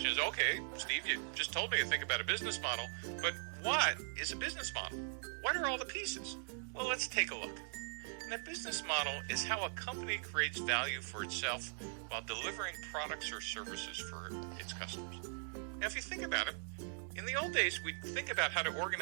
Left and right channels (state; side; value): silent; left; 51 dB below the other